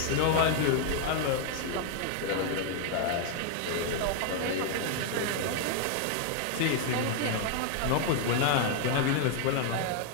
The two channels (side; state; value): both; different; correlation 0.00